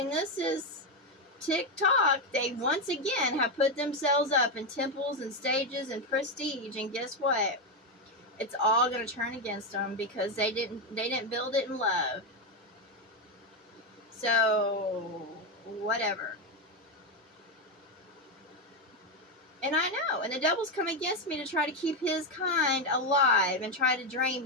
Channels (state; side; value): normal; both; correlation 0.07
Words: this is TikTok. They once again have put themselves up in temples and stages and prestige, and guess what? It's all going to turn against them because they didn't build it in love. So, whatever. And I know, and the devil's come against me to try to keep his kind alive and try to drain